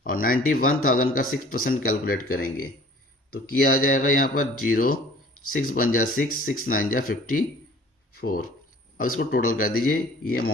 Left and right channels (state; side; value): normal; both; correlation 0.50